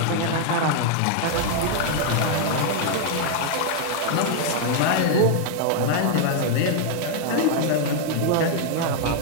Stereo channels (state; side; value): different; both; correlation 0.00